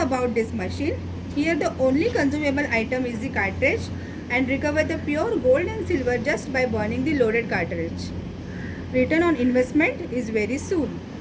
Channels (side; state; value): both; identical; correlation 1.00